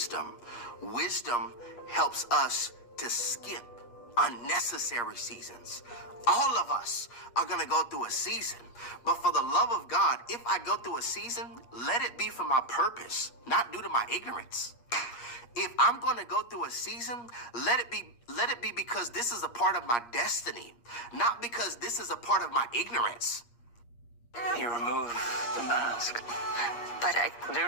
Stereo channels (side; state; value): right; late; 8.4 ms